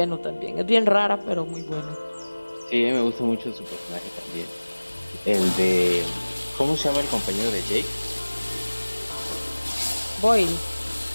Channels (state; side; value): inverted; both; correlation -1.00